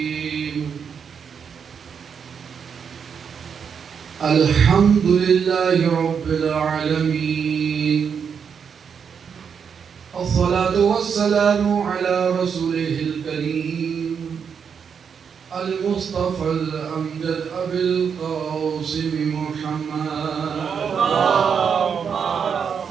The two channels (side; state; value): left; quieter; 6.8 dB